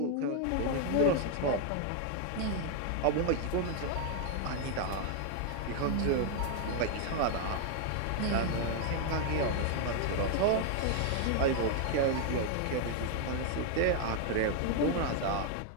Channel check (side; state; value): both; different; correlation 0.00